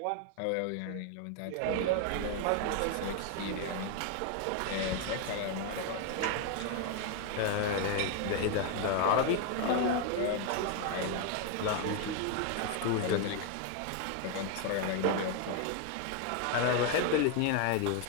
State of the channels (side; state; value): both; different; correlation 0.01